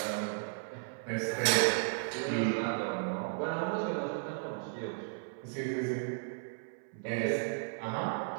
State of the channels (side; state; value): left; silent; 55 dB below the other